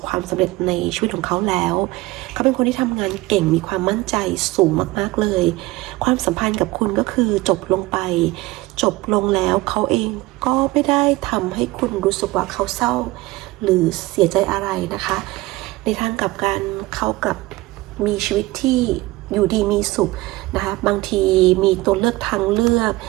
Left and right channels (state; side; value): quieter; left; 20.0 dB